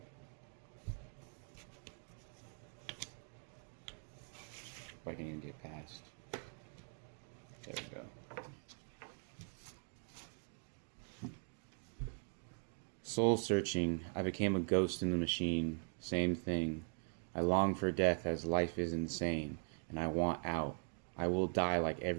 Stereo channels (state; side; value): silent; left; 50 dB below the other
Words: If I can even get past. There we go. Soul searching, I became a ghost in the machine. Same thing. I long for death as life is insane, and I want out. I will die like